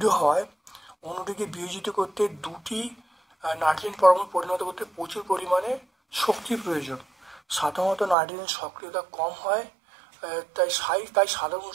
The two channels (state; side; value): drops out; left; at 8.2 s